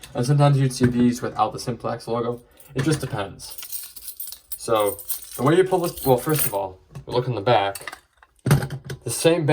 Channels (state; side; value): identical; both; correlation 1.00